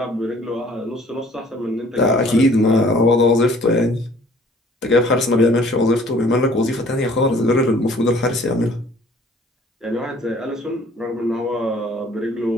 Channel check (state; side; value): normal; both; correlation 0.55